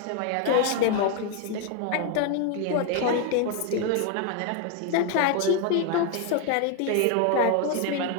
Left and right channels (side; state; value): both; different; correlation 0.01